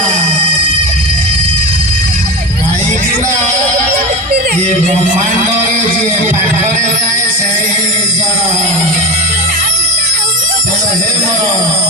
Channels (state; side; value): normal; both; correlation 0.25